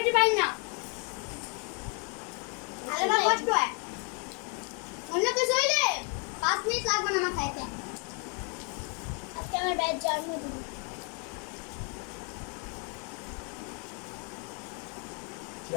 পাই না, তাহলে বা কষ্ট হয়। অন্য কিছু হইলে 5 মিনিট লাগবে না আমার খাইতে। আজকে আমার ভাইয়ের জন্মদিন।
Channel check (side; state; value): right; quieter; 35.5 dB